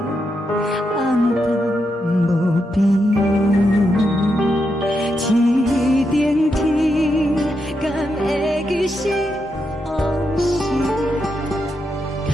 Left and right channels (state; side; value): normal; both; correlation 0.83